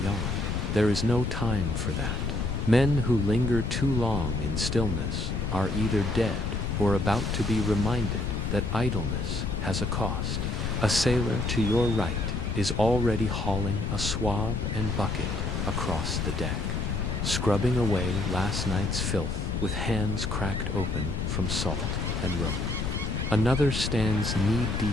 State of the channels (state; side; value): noise; left; rumble, 1 dB below the sound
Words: yawn. There is no time for that. Men who linger too long in stillness are either dead or about to be reminded that idleness has a cost. A sailor to your right is already hauling a swab and bucket across the deck, scrubbing away last night's filth with hands cracked open from salt and rope. Another stands